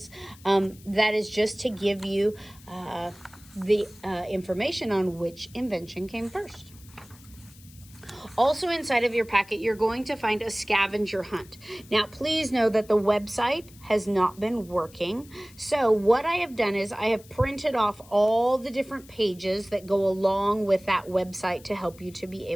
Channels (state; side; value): noise; left; hiss, 24 dB below the sound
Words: That is just to give you the information on which invention came first. Also inside of your packet, you're going to find a scavenger hunt. Now, please know that the website has not been working. So what I have done is I have printed off all the different pages that go along with that website to help you to be